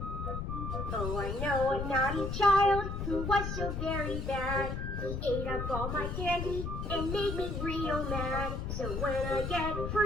Oh, I know a naughty child who was so very bad. He ate up all my candy and made me real mad. So when I get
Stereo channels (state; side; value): noise; left; rumble, 3 dB below the sound